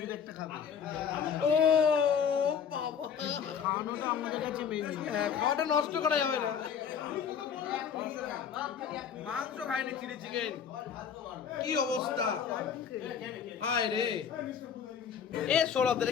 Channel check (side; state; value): right; quieter; 7.4 dB